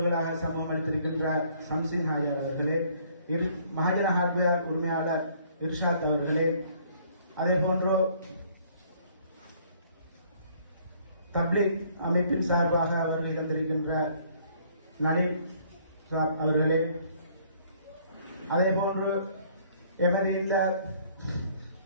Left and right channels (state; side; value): inverted; both; correlation -0.61